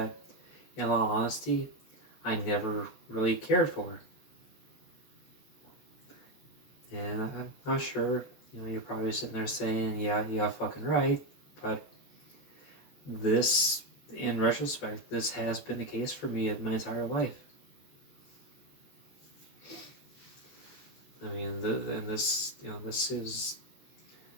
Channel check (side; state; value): right; late; 14 ms